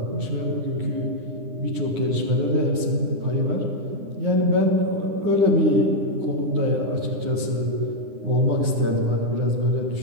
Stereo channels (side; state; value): left; late; 9.9 ms